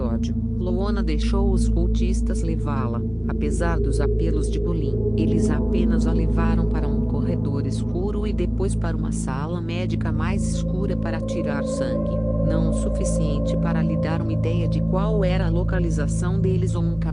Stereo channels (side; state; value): left; noise; rumble, 23 dB below the sound